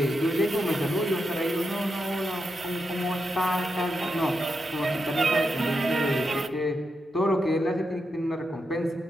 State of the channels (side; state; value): both; normal; correlation 0.86